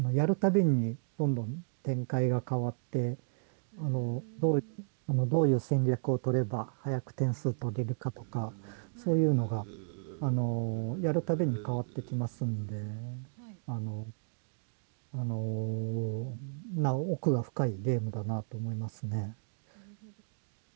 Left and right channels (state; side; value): silent; left; digital silence